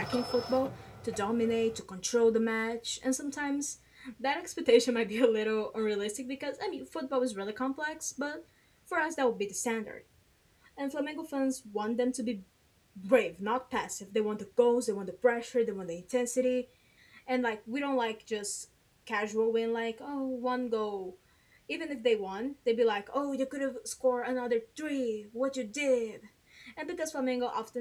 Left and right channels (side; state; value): both; identical; correlation 1.00